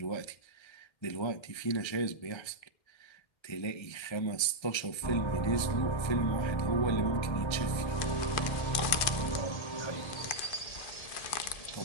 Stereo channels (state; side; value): late; right; 1.3 ms